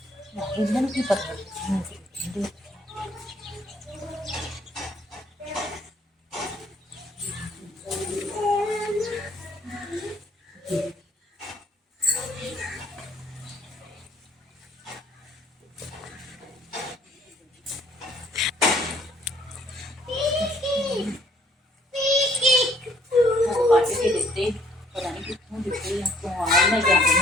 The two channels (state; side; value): normal; both; correlation 0.62